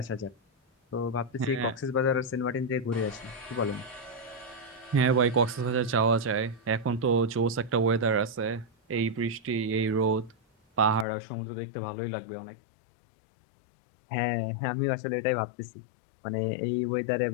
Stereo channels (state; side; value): drops out; right; at 11.1 s